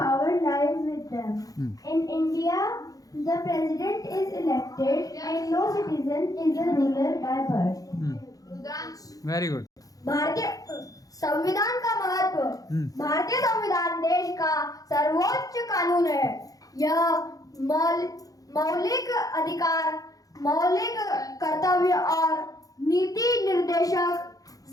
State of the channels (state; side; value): late; right; 0.17 ms